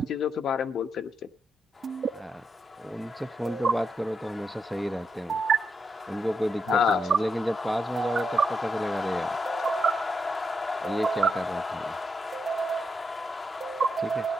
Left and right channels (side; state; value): both; normal; correlation 0.82